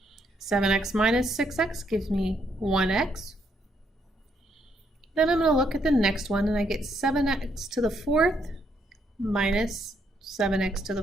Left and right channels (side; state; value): both; normal; correlation 0.74